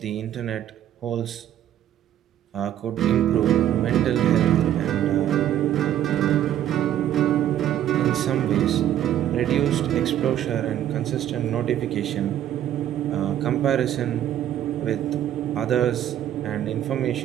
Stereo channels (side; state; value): left; quieter; 11.4 dB